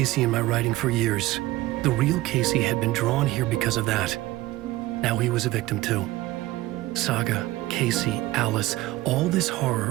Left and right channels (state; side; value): quieter; left; 17.5 dB